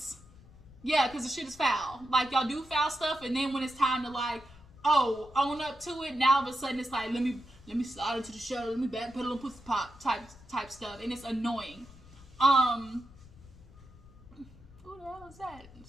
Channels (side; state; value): left; noise; rumble, 22 dB below the sound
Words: Yeah, because the shit is foul. Like, y'all do foul stuff, and then when it's time to, like, oh, own up to it, now all of a sudden it's like, let me slide into the show, let me back pedal and pussy pop type stuff, and it's annoying. Who the hell is that?